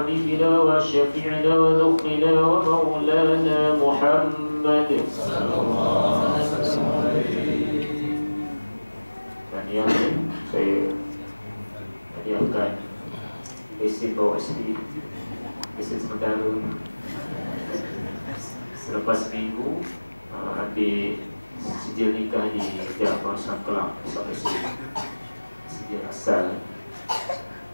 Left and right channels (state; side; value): inverted; both; correlation -1.00